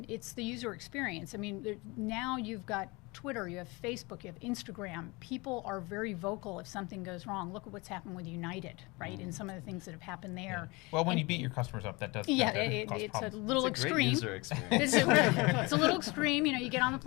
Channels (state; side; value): quieter; right; 25.5 dB